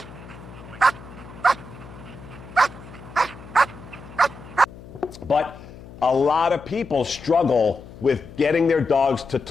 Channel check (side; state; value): left; noise; hum, 17 dB below the sound